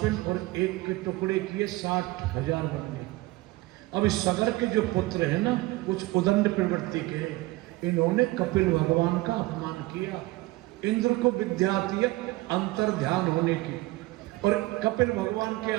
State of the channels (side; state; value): left; quieter; 20.1 dB